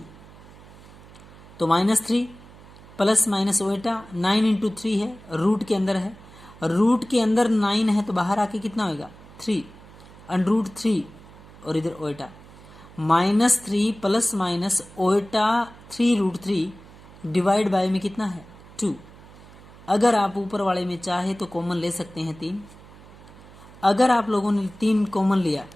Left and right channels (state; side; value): noise; right; hum, 21 dB below the sound